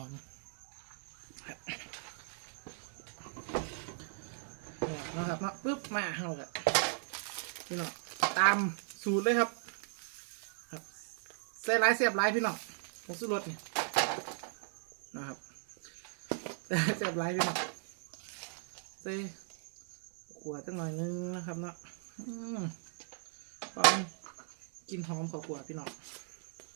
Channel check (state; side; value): silent; left; 53 dB below the other